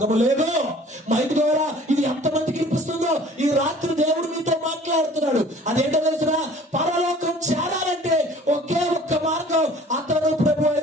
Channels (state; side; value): normal; both; correlation 0.50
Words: లేదు. మైక్ ద్వారా ఇది ఎంతమందికి వినిపిస్తుందో ఈ రాత్రి దేవుడు మీతో మాట్లాడుతున్నాడు. అదేంటో తెలుసునా? పరలోకం చేరాలంటే ఒకే ఒక్క మార్గం, అతను ప్రభు